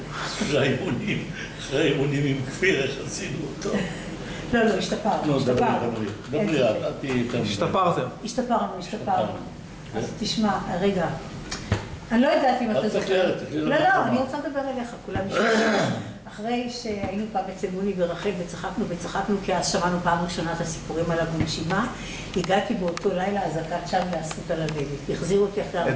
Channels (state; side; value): identical; both; correlation 1.00